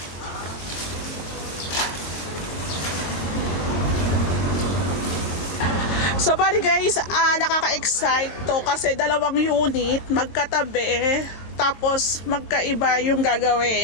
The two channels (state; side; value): late; right; 22 ms